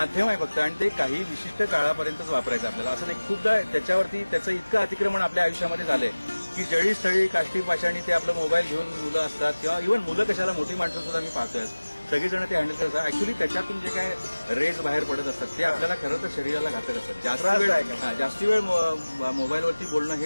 आहे फक्त, आणि ते काही विशिष्ट काळापर्यंतच वापरायचं आपल्याला. असं नाही, खूपदा त्याच्यावरती त्याचं इतकं अतिक्रमण आपल्या आयुष्यामध्ये झालंय की जळी स्थळी काष्टी पाषाणी ते आपलं मोबाईल घेऊन मुलं असतात, किंवा इव्हन मुलं कशाला, मोठी माणसं सुद्धा मी पाहतोय सगळीजण ते हँडल करतात. ऍक्च्युली त्याच्यातून जे काय रेज बाहेर पडत असतात ते आपल्याला खरं तर शरीराला घातक असतात. जास्ती वेळ मोबाईलवरती बोलणं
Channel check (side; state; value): both; inverted; correlation -1.00